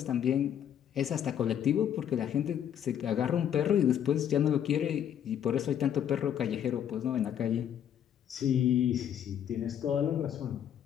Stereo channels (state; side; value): quieter; right; 9.6 dB